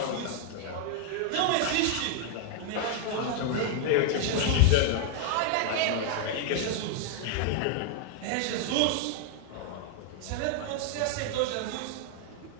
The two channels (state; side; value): different; both; correlation 0.00